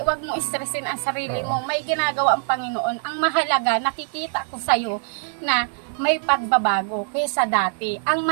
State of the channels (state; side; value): silent; left; 61 dB below the other